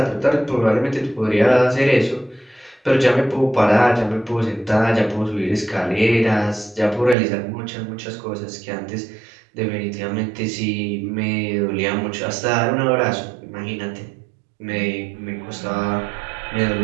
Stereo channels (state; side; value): drops out; left; at 7.2 s